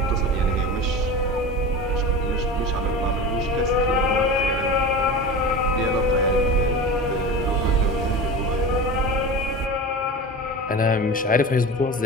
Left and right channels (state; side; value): normal; both; correlation 0.30